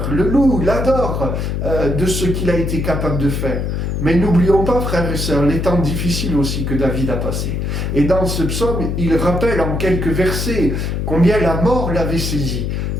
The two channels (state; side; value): noise; left; hum, 1 dB below the sound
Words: le loue, l'adore de ce qu'il a été capable de faire. Mais n'oublions pas, frères et sœurs, les temps difficiles aussi que David a passés. Et dans ce psaume, il rappelle en quelques versets combien la mort l'avait saisi,